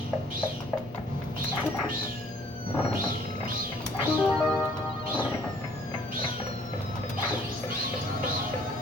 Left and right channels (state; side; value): normal; both; correlation 0.59